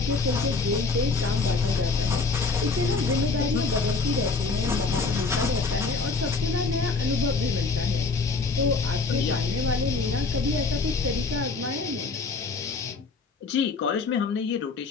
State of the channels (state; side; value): quieter; right; 4.2 dB